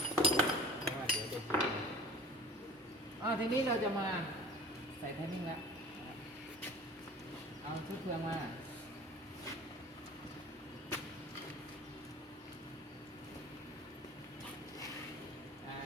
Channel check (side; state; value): both; normal; correlation 0.43